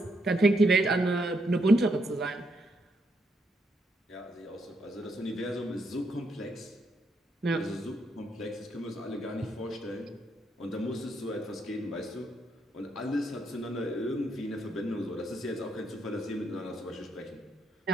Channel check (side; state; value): both; normal; correlation 0.77